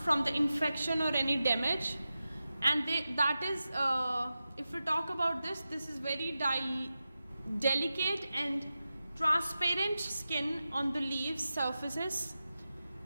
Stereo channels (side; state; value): both; inverted; correlation -0.93